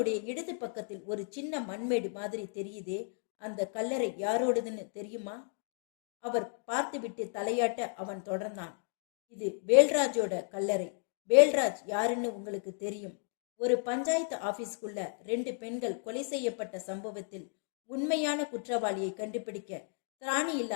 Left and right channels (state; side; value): silent; right; 55 dB below the other